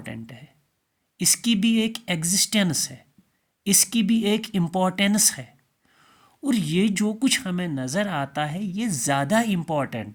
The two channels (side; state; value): both; identical; correlation 1.00